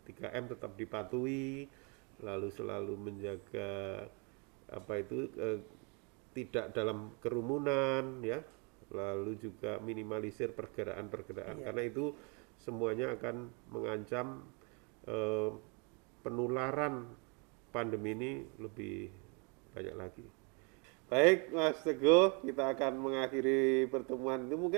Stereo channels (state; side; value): quieter; left; 34.0 dB